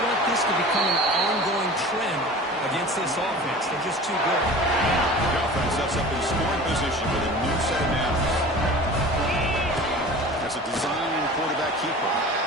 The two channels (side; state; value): both; normal; correlation 0.39